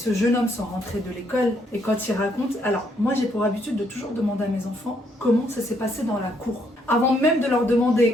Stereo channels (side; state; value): both; normal; correlation 0.72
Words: jeune homme sont rentrés de l'école et quand ils racontent. Alors, moi j'ai pour habitude de toujours demander à mes enfants comment ça s'est passé dans la cour. Avant même de leur